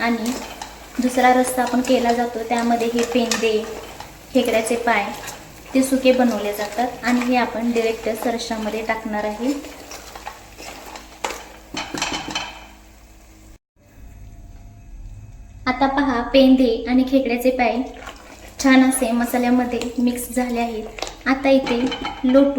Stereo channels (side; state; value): both; identical; correlation 1.00